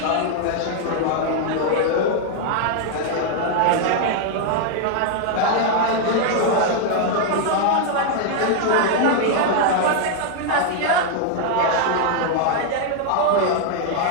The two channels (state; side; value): different; both; correlation 0.00